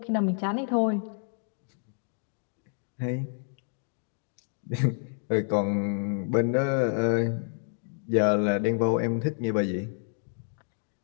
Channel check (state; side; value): silent; right; digital silence